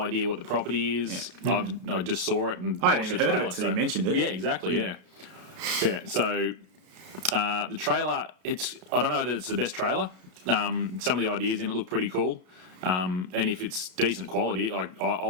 idea what the property is. Yeah. I just saw it and I watched hadn't the heard trailer. of it until you mentioned it. Yeah, exactly. Yeah. So the trailer, I don't know that it's the best trailer. Some of the ideas in it look pretty cool. And if it's decent quality,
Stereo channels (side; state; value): left; late; 33 ms